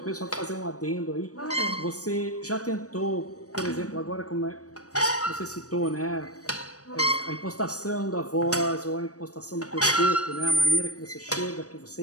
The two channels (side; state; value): right; late; 0.66 ms